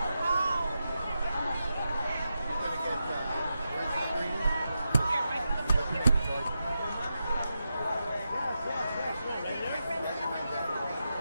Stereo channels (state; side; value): inverted; both; correlation -0.88